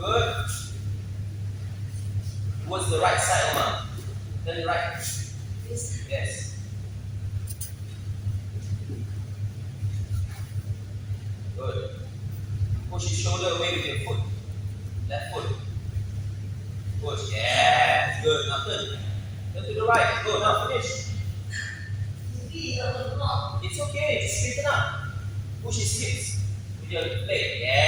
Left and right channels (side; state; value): both; identical; correlation 1.00